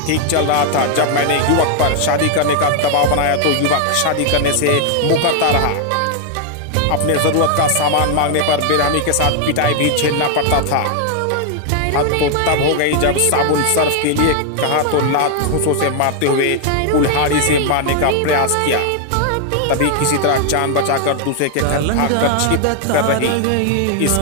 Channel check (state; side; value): different; both; correlation 0.00